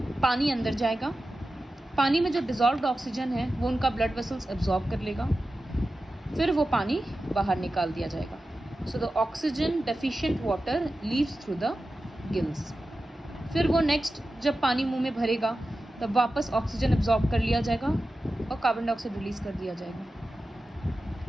पानी अंदर जाएगा, पानी में जो डिजॉल्व्ड ऑक्सीजन है वो उनका ब्लड वेसल्स एब्जॉर्ब कर लेगा, फिर वो पानी बाहर निकाल दिया जाएगा। So the oxygen deficient water leaves through the gills. फिर वो नेक्स्ट जब पानी मुंह में भरेगा तब वापस ऑक्सीजन एब्जॉर्ब कर लिया जाएगा और कार्बन डाइऑक्साइड रिलीज कर दिया जाएगा।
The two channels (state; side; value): normal; both; correlation 0.93